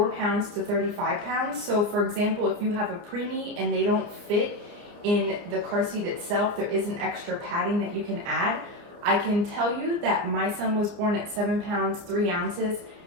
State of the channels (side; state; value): left; late; 29 ms